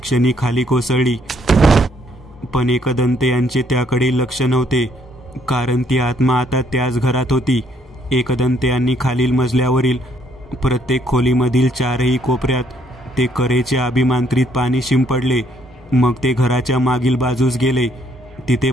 क्षणी खाली कोसळली. पण एकदंत यांचे त्याकडे लक्ष नव्हते, कारण ती आत्मा आता त्याच घरात होती. एकदंत यांनी खालील मजल्यावरील प्रत्येक खोलीमधील चारही कोपऱ्यात ते करेचे अभिमांत्रित पाणी शिंपडले. मग ते घराच्या मागील बाजूस गेले. तिथे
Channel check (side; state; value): both; normal; correlation 0.69